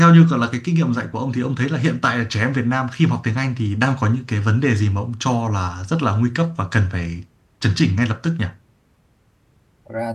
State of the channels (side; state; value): both; identical; correlation 1.00